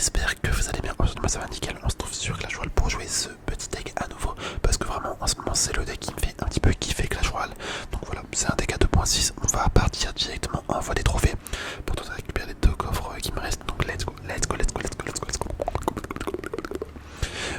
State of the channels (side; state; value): both; identical; correlation 1.00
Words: que vous allez bien. Aujourd'hui moi ça va nickel, on se trouve sur Clash Royale pour jouer ce petit deck à nouveau. Parce que vraiment en ce moment c'est le deck qui me fait un petit peu kiffer Clash Royale. Donc voilà, c'est un deck à 2.6, on va partir directement en voie des trophées. Pour tenter de récupérer les deux coffres qui me restent. Donc let's go, let's go, let's go, let's go, let's go, let's go.